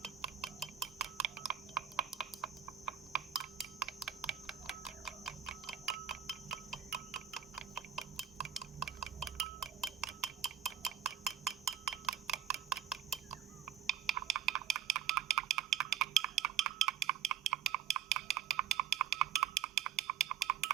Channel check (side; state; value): left; quieter; 10.0 dB